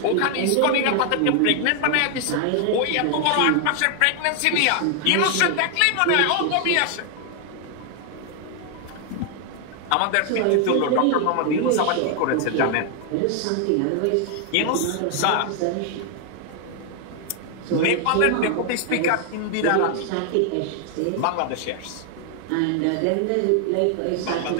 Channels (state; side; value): different; both; correlation 0.00